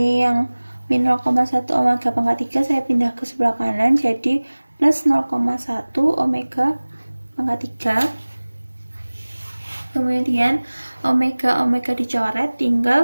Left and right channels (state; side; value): inverted; both; correlation -1.00